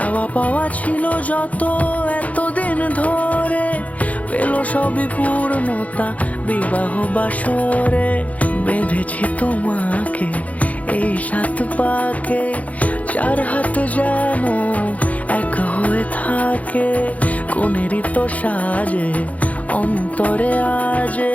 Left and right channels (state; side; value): late; right; 0.069 ms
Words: পাওয়া ছিল যত এতদিন ধরে, পেল সবই পূর্ণতা বিবাহ বাসরে। বেঁধেছি তোমাকে এই 7 পাকে, 4 হাত যেন এক হয়ে থাকে। কোনেরই তো সাজে অন্তরে আজে,